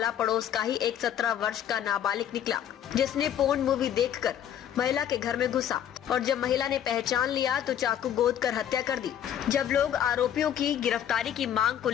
पड़ोस का ही एक 17 वर्ष का नाबालिग निकला, जिसने पोर्न मूवी देखकर महिला के घर में घुसा और जब महिला ने पहचान लिया तो चाकू गोद कर हत्या कर दी। जब लोग आरोपियों की गिरफ्तारी की मांग को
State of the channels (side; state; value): right; quieter; 10.1 dB